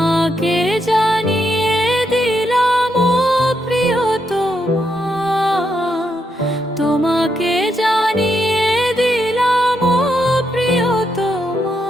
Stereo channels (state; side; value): normal; both; correlation 0.80